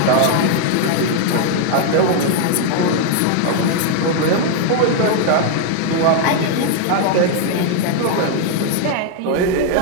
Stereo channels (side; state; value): both; different; correlation 0.00